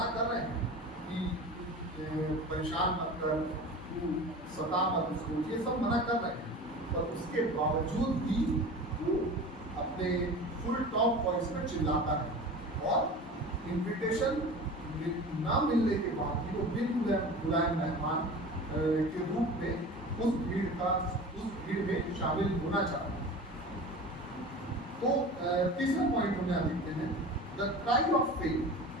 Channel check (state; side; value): normal; both; correlation 0.35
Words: कर रहे हैं कि परेशान मत कर, तू सता मत उसको, ये सब मना कर रहे हैं, पर उसके बावजूद भी वो अपने फुल टॉप वॉइस में चिल्लाता है। और इन्विटेशन ना मिलने के बाद भी वो बिन बुलाए मेहमान के रूप में उस भीड़ में शामिल होना चाहता है। तो तीसरा पॉइंट हम यहाँ देखते हैं, द क्राई ऑफ फेथ,